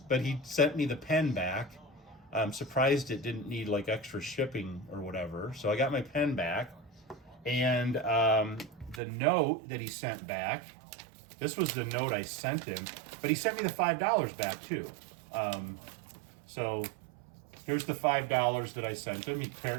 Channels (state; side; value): drops out; left; at 9.0 s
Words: but he sent me the pen back. I'm surprised it didn't need extra shipping or whatever. So I got my pen back, and the note that he sent back, this was the note I sent him, but he sent me the $5 back too. So here's the $5 that I sent him.